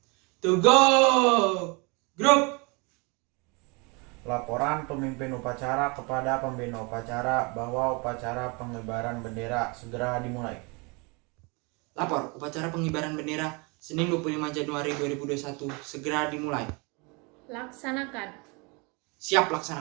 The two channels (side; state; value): left; quieter; 29.8 dB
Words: Tegak. Gerak. Laporan pemimpin upacara kepada pembina upacara bahwa upacara pengibaran bendera segera dimulai. Lapor, upacara pengibaran bendera Senin 25 Januari 2021 segera dimulai. Laksanakan. Siap